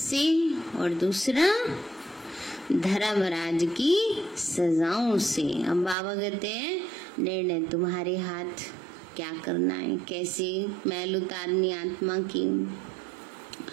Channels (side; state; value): left; drops out; at 6.0 s